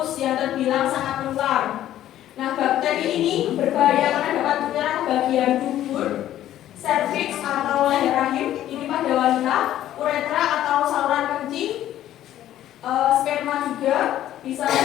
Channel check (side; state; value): right; quieter; 12.5 dB